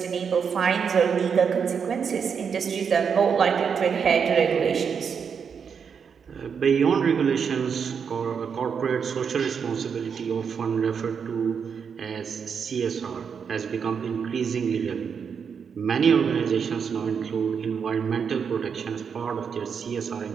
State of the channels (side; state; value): left; quieter; 6.6 dB